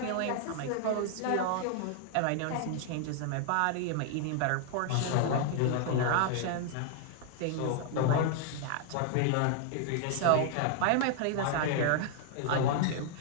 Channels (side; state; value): both; different; correlation 0.00